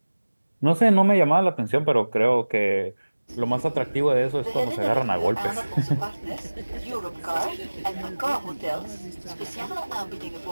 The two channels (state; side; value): inverted; both; correlation -1.00